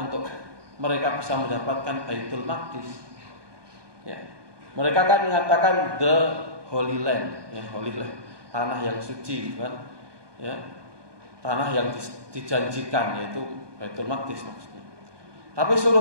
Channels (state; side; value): late; left; 1.2 ms